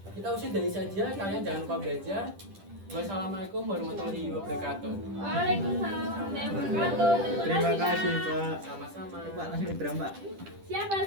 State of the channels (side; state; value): left; late; 10 ms